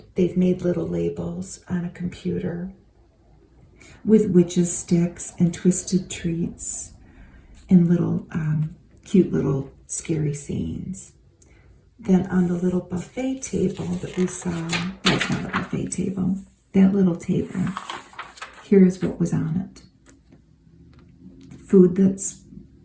made little labels on a computer with witches sticks and twisted treats and little cute little scary scenes. Then on the little buffet table that we saw, that's not a buffet table, that little table, here's what was on it. Food that's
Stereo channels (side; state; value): both; identical; correlation 1.00